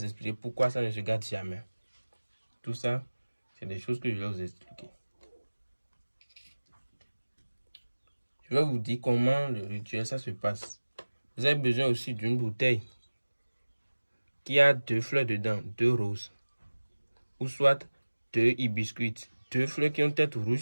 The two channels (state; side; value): inverted; both; correlation -1.00